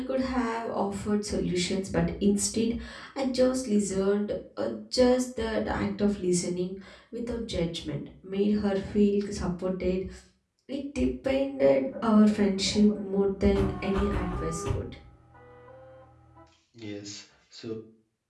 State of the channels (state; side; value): identical; both; correlation 1.00